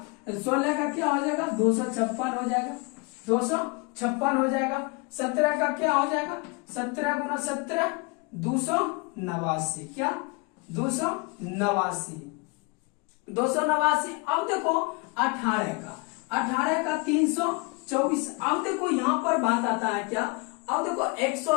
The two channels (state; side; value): quieter; right; 29.0 dB